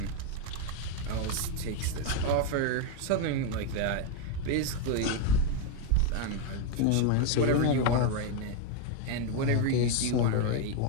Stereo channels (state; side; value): different; both; correlation 0.01